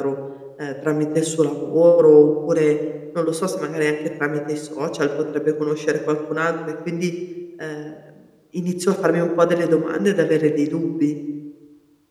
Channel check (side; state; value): both; identical; correlation 1.00